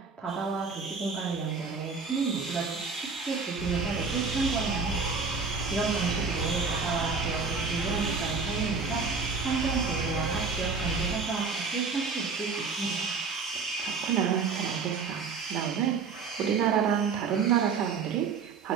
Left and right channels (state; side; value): quieter; left; 5.0 dB